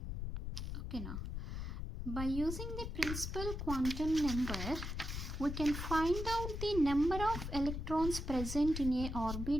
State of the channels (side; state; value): left; noise; rumble, 4 dB below the sound